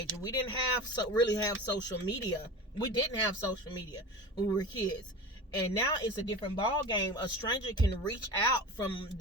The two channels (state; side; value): normal; both; correlation 0.32